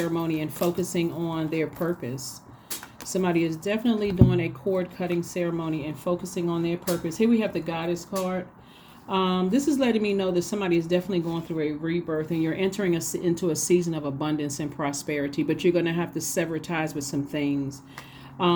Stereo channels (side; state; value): both; identical; correlation 1.00